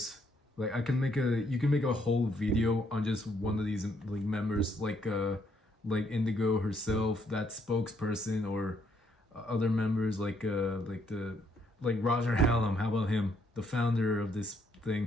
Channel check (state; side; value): normal; both; correlation 0.71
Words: like, you can make a whole video on just one of these, like, members, like Indigo herself, that spokesperson, or other members like Roger Hallam. How about him, the founder of this